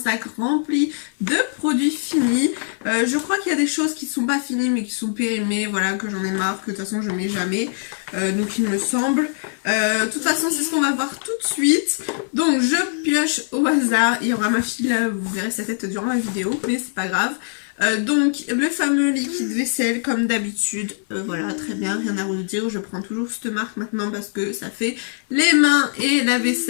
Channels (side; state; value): right; silent; 58 dB below the other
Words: rempli de produits finis. Je crois qu'il y a des choses qui ne sont pas finies mais qui sont périmées, voilà, que j'en ai marre, que de toute façon je mets jamais. Donc il me semble. De toute façon c'est ce qu'on va voir tout de suite. Donc je pioche au hasard. Il y aura ma fille là, vous verrez sa tête durant la vidéo, mais c'est pas grave. Donc le fameux liquide vaisselle comme d'habitude, voilà, très bien, rien à vous dire, je prends toujours cette marque maintenant parce que ça fait les mains et la